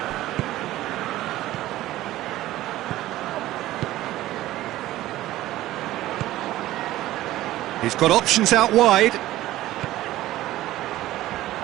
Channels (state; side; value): quieter; left; 15.4 dB